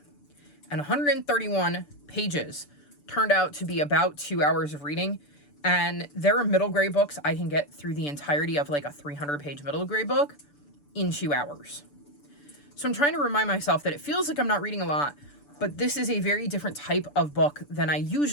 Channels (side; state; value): right; late; 6.9 ms